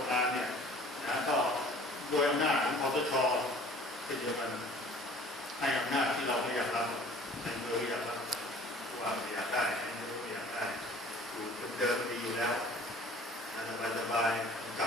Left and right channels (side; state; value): both; normal; correlation 0.49